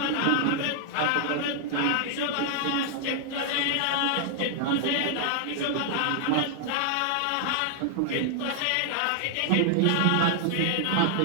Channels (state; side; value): different; both; correlation 0.00